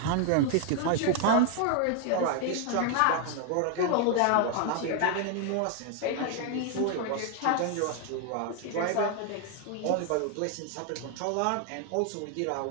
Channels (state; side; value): different; both; correlation 0.00